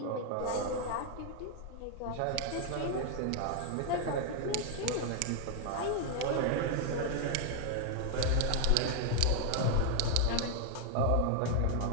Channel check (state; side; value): different; both; correlation 0.00